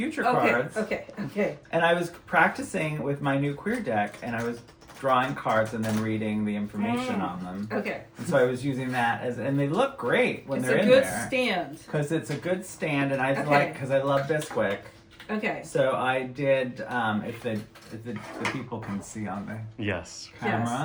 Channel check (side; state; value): both; identical; correlation 1.00